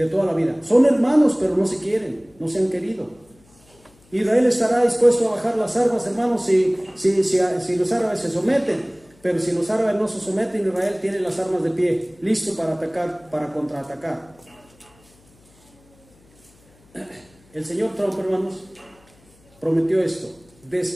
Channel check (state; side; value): noise; left; hum, 30 dB below the sound